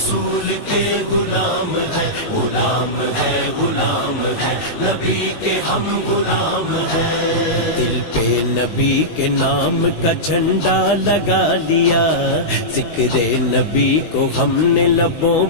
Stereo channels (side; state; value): right; late; 19 ms